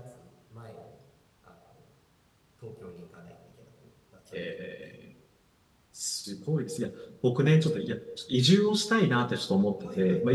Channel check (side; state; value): both; identical; correlation 1.00